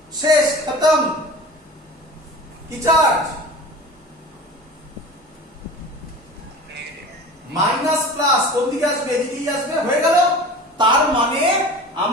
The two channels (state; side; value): normal; both; correlation 0.37